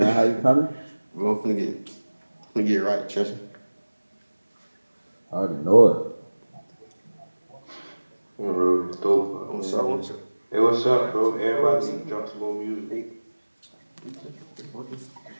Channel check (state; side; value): inverted; both; correlation -1.00